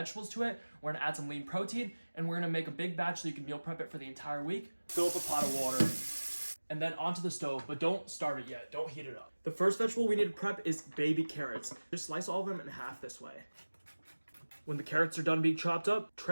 to it. We're gonna add some lean protein, and we're gonna make a big batch so you can meal prep it for the entire week. Fill up a pot of water, and then onto the stove, but don't start it yet. Don't heat it up. The first vegetable we need to prep is baby carrots. Just slice all of them in half this way. When the carrots are done being chopped up,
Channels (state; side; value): inverted; both; correlation -1.00